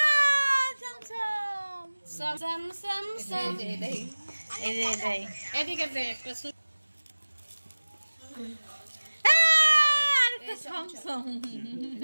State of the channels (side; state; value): both; inverted; correlation -1.00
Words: সাম সাম সাম সাম। এই যে এটাই। এদিকে দে একটা। আরেকটা সমসম।